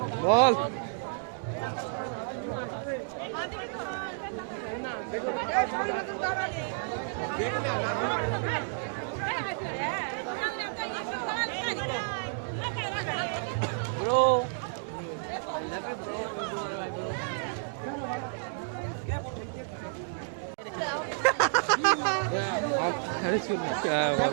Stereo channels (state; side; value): silent; left; digital silence